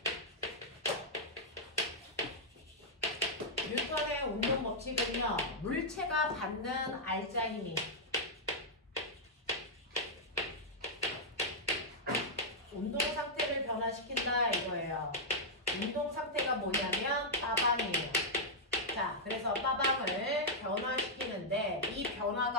뉴턴의 운동 법칙은요, 물체가 받는 알자 힘이 운동 상태를 변화시킨다 이거예요. 운동 상태가 뭐냐면 빠방이에요. 자, 그래서 빠방을 변화시키는데 이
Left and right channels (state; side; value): normal; both; correlation -0.06